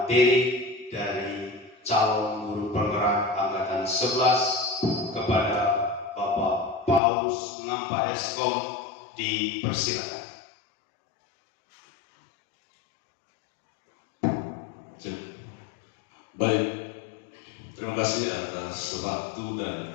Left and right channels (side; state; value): right; drops out; at 7.0 s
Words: dari calon guru penggerak angkatan 11 kepada Bapak Paulus Ngampa Eskom. Dipersilakan. Baik, terima kasih atas waktu dan